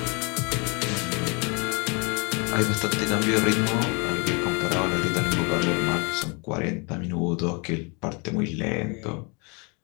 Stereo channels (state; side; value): quieter; right; 31.9 dB